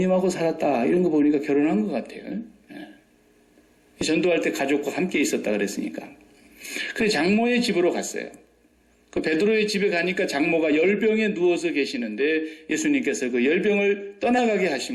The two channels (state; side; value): identical; both; correlation 1.00